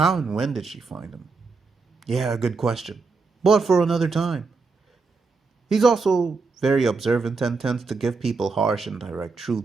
and when did she find him? Yeah, good question, but for another time. He's also very observant and tends to give people harsh and direct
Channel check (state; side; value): quieter; left; 4.3 dB